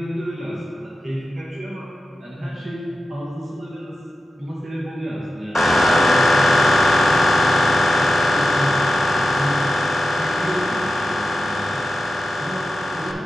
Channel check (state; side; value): normal; both; correlation 0.92